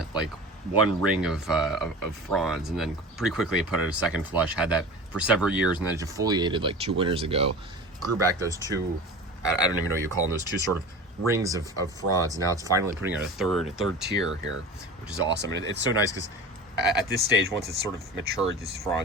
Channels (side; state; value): both; normal; correlation 0.34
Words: ring of fronds, and then pretty quickly it put out a second flush, had that for several years, and then it defoliated like 2 winters ago, grew back those two, I don't even know what you call them, those two sort of rings of fronds, and now it's finally putting out a third tier here, which is awesome. And it's so nice because at this stage, once it's sort of matured, these